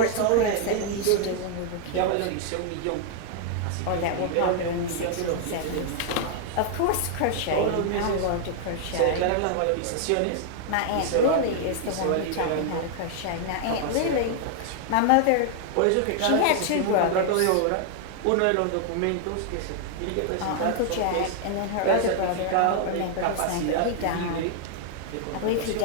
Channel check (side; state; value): both; different; correlation 0.00